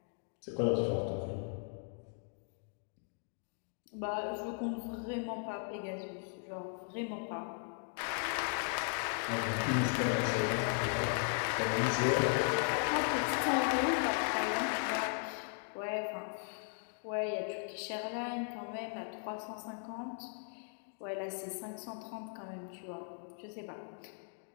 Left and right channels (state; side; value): silent; right; 53 dB below the other